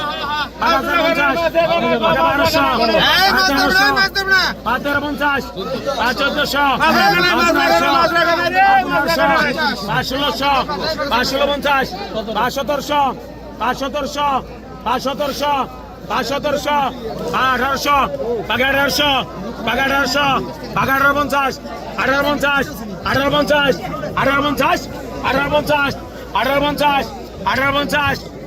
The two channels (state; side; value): identical; both; correlation 1.00